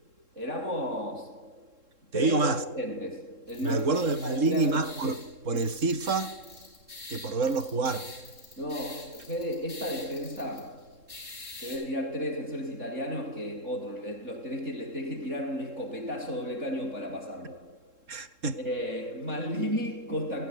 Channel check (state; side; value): late; left; 3.7 ms